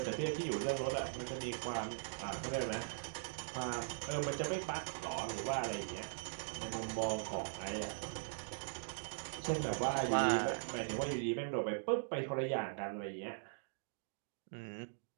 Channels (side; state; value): left; silent; digital silence